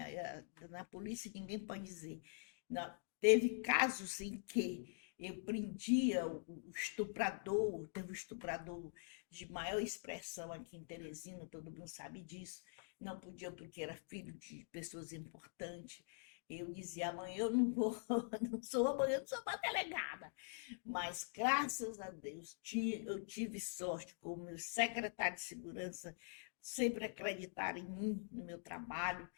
Na polícia ninguém pode dizer. Não, teve casos em que eu prendia o estuprador, teve um estuprador de maior expressão aqui em Teresina, todo mundo sabe disso. Não podia porque era filho de pessoas importantes. Eu dizia, amanhã eu não vou, amanhã eu não sou uma delegada. Mas, graças a Deus, eu tive sorte com o meu secretário de segurança, sempre acreditaram em mim, no meu trabalho.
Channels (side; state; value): right; silent; digital silence